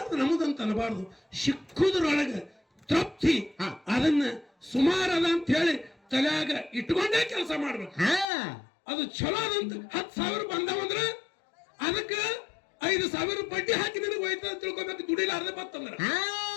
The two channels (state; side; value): drops out; right; at 8.2 s